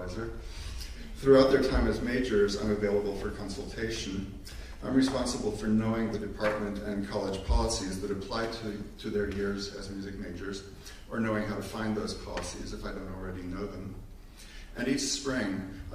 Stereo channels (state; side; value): identical; both; correlation 1.00